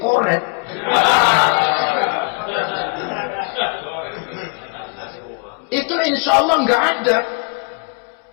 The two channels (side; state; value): right; quieter; 31.5 dB